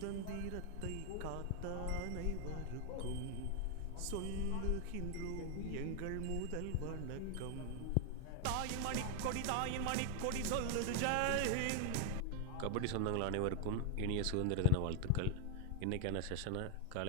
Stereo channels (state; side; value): different; both; correlation 0.01